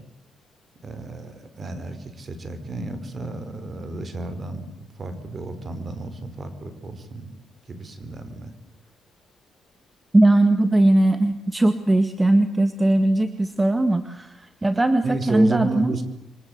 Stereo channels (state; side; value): normal; both; correlation 0.97